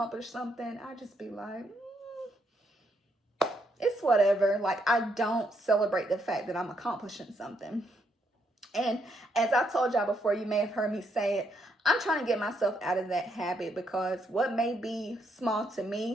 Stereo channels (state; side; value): normal; both; correlation 0.75